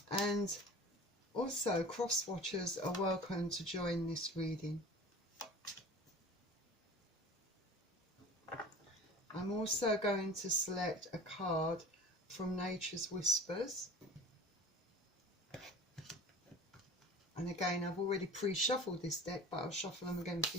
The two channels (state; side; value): normal; both; correlation 0.40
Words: And also cross-watchers are welcome to join this reading. I'm also going to select a card from Nature's Whispers. And again, I've already pre-shuffled this deck, but I'll shuffle them again for